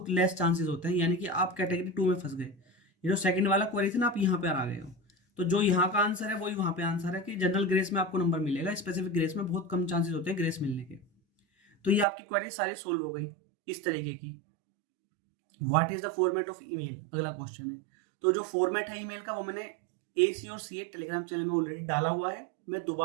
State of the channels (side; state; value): left; drops out; at 12.1 s